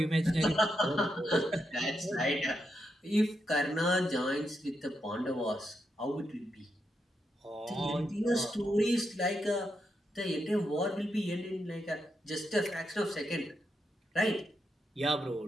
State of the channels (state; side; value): normal; both; correlation 0.83